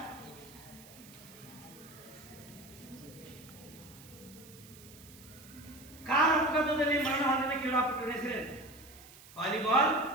ಕಾರ್ ಅಪಘಾತದಲ್ಲಿ ಮರಣ ಹೊಂದಿದ ಕ್ರೀಡಾಪಟುಗಳ ಹೆಸರು? ವಾಲಿಬಾಲ್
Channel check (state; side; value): noise; right; hiss, 20 dB below the sound